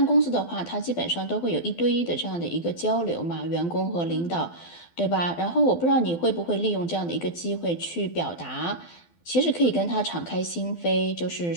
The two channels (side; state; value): right; late; 12 ms